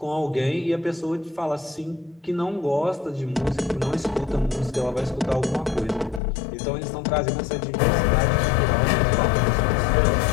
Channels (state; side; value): drops out; right; at 6.2 s